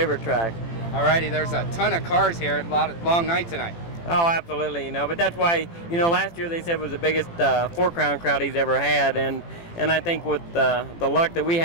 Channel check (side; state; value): right; late; 18 ms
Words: track. All righty, there's a ton of cars here. A long night tonight. Oh, absolutely, you know, but that's why, you know, last year they said was the biggest Four Crown crowd he's ever had, and I think with the luck that we